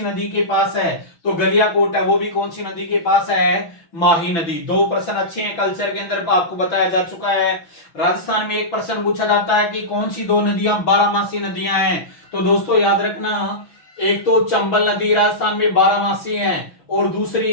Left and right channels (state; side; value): late; right; 6.1 ms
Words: नदी के पास है? तो गलियाकोट है वो भी कौन सी नदी के पास है? माही नदी। 2 प्रश्न अच्छे हैं, कल्चर के अंदर आपको बताया जा चुका है। राजस्थान में एक प्रश्न पूछा जाता है कि कौन सी 2 नदियां 12मासी नदियां हैं? तो दोस्तों याद रखना, एक तो चंबल नदी राजस्थान में 12मासी है और